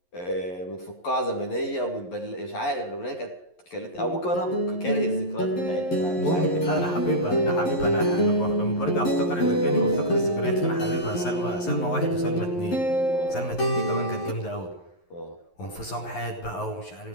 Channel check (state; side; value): late; right; 11 ms